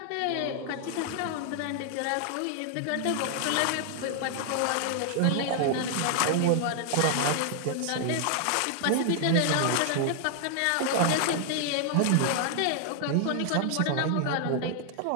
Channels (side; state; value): both; different; correlation 0.00